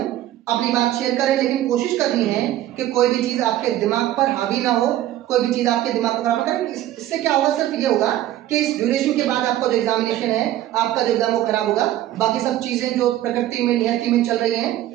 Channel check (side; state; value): left; quieter; 13.5 dB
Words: अपनी बात शेयर करें, लेकिन कोशिश करनी है कि कोई भी चीज आपके दिमाग पर हावी ना हो, कोई भी चीज आपके दिमाग को खराब ना करे। इससे क्या होगा? सिर्फ ये होगा कि इस ड्यूरेशन के बाद आपका जो एग्जामिनेशन है, आपका जो एग्जाम वो खराब होगा, बाकी सब चीजें जो प्रकृति में नियति में चल रही